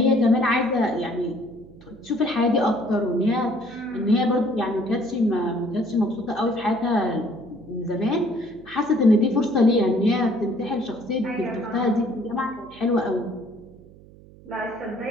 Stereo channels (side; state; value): right; noise; hum, 22 dB below the sound